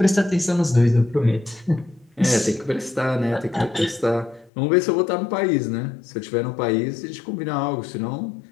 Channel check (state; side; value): drops out; right; at 4.5 s